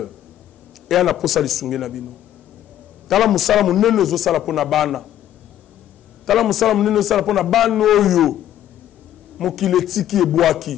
et ana posa lisungi na bino. Tala musala munene zo sala pona bana. Tala musala munene sala pona bana oyo mokile tiki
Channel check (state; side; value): quieter; right; 11.7 dB